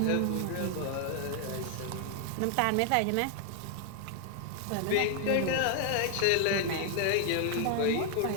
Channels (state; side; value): different; both; correlation 0.00